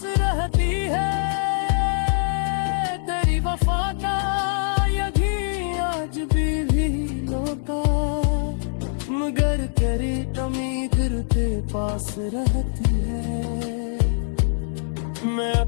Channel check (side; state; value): right; silent; digital silence